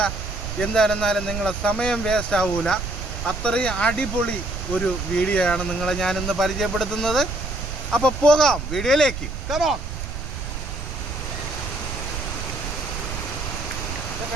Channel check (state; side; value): noise; right; rumble, 6 dB below the sound